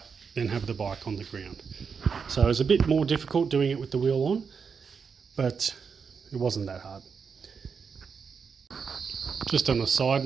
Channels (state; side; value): quieter; left; 5.9 dB